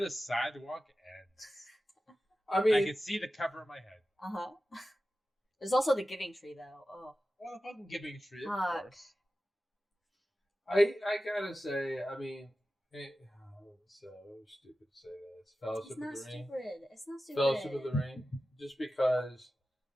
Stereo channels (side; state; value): both; normal; correlation 0.94